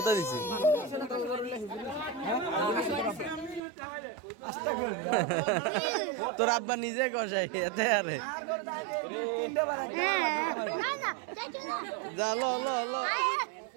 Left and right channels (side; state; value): left; drops out; at 3.6 s